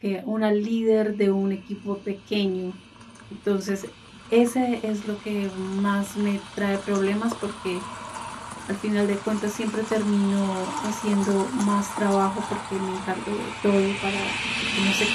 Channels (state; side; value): identical; both; correlation 1.00